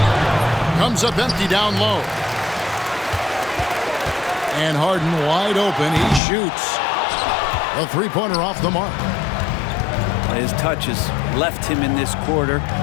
Comes up empty down low. And Harden wide open. He shoots. A three-pointer off the mark. His touch has left him in this quarter.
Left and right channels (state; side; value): drops out; right; at 6.2 s